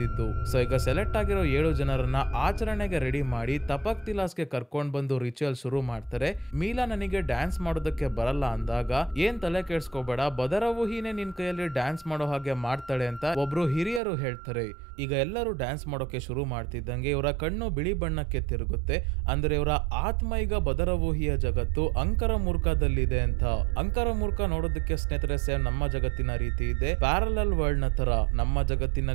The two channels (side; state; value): left; drops out; at 14.0 s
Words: ಸೊ ಈಗ ಸೆಲೆಕ್ಟ್ ಆಗಿರೋ 7 ಜನರನ್ನ ಆಚರಣೆಗೆ ರೆಡಿ ಮಾಡಿ ತಪಕ್ ತಿಲಾಸ್ಗೆ ಕರ್ಕೊಂಡ್ ಬಂದು ರಿಚುವಲ್ ಶುರು ಮಾಡ್ತಾರೆ. ಮೀಲಾ ನನಗೆ ಡ್ಯಾನ್ಸ್ ಮಾಡೋದಕ್ಕೆ ಬರಲ್ಲ ಅಂದಾಗ ಏನ್ ತಲೆ ಕೆಡ್ಸ್ಕೋಬೇಡ, ಬದರವೂಹಿನೇ ನಿನ್ ಕೈಯಲ್ಲಿ ಡ್ಯಾನ್ಸ್ ಮಾಡೋ ಹಾಗೆ ಮಾಡ್ತಾಳೆ ಅಂತ ಒಬ್ರು ಹಿರಿಯರು ಹೇಳ್ತಾರೆ. ಈಗ ಎಲ್ಲರೂ ಡ್ಯಾನ್ಸ್ ಮಾಡೋಕೆ ಶುರು ಮಾಡ್ತಿದ್ದಂಗೆ ಇವರ ಕಣ್ಣು ಬಿಳಿ ಬಣ್ಣಕ್ಕೆ ತಿರುಗುತ್ತೆ. ಅಂದ್ರೆ ಇವರ ಆತ್ಮ ಈಗ ಬದರವೂಹಿಯ ಜಗತ್ತು ಅಂಕರಮೂರ್ಖದಲ್ಲಿದೆ ಅಂತ. ಅಂಕರಮೂರ್ಖ ನೋಡೋದಕ್ಕೆ ಸ್ನೇಹಿತರೆ ಸೇಮ್ ನಮ್ಮ ಜಗತ್ತಿನ ರೀತಿ ಇದೆ, ಪ್ಯಾರಲಲ್ ವರ್ಲ್ಡ್ ನ ತರ. ನಮ್ಮ